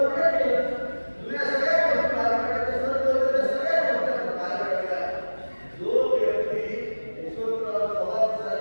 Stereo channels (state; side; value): inverted; both; correlation -1.00